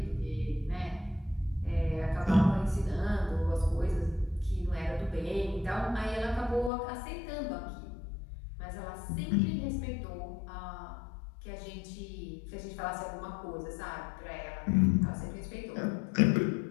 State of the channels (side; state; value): right; drops out; at 6.7 s